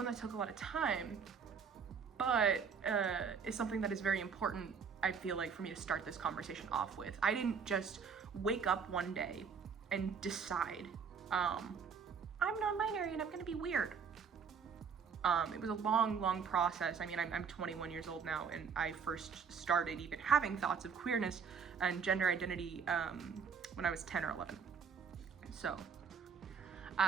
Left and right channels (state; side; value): quieter; left; 6.3 dB